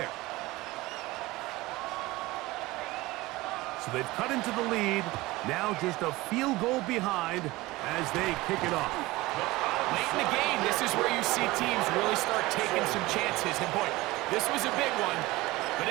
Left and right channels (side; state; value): left; quieter; 20.0 dB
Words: So they've cut into the lead. Now just a field goal behind as they kick it off. Late in the game, this is where you see teams really start taking some chances. And boy, this was a big one, but